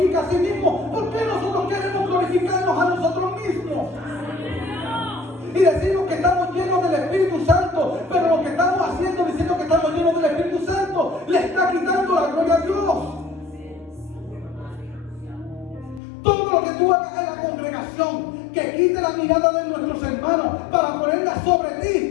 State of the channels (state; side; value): drops out; right; at 16.0 s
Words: a sí mismo, ¿por qué nosotros queremos glorificarnos a nosotros mismos? Y decimos que estamos llenos del Espíritu Santo, pero lo que estamos haciendo diciendo que estamos llenos del Espíritu Santo le está quitando la gloria a Dios. Todo lo que tú hagas en la congregación que quite la mirada de nuestros hermanos para ponerla sobre